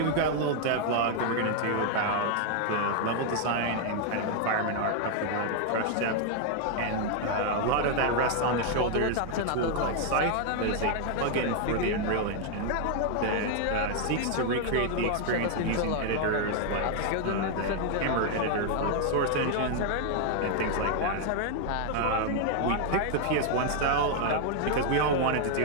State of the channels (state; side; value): different; both; correlation 0.00